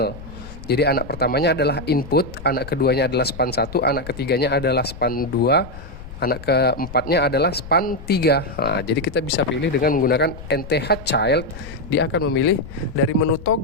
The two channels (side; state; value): left; noise; rumble, 14 dB below the sound